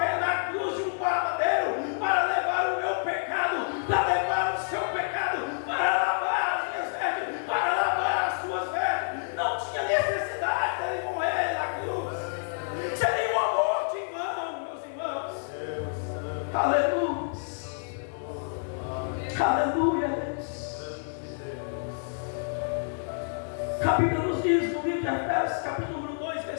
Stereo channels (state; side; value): silent; right; digital silence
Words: na cruz de um madeiro para levar o meu pecado, para levar o seu pecado, para lavar as minhas vestes, para lavar as suas vestes. Não tinha necessidade de ele morrer na cruz. Seria um amor de irmão, meus irmãos. Aleluia. Aleluia, Deus. A Bíblia nos diz no livro de Efésios, capítulo 2,